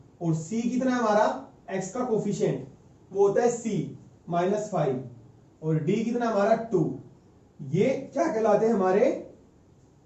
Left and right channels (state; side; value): identical; both; correlation 1.00